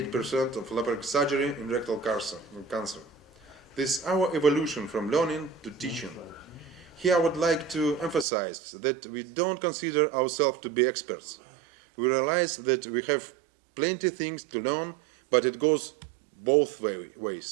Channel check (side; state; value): left; drops out; at 8.2 s